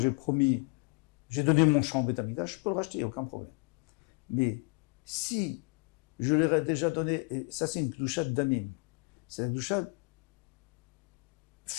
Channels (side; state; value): right; quieter; 32.5 dB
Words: j'ai donné mon champ au Beth Amikdash, je peux le racheter, il n'y a aucun problème. Mais si je l'aurais déjà donné, et ça c'est une kdusha damim, c'est une kdusha